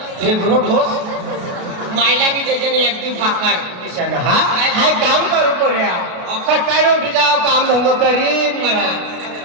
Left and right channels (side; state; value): left; late; 33 ms